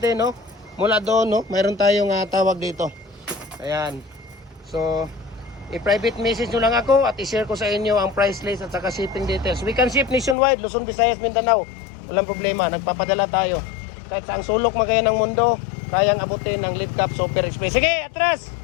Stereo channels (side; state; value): right; drops out; at 10.4 s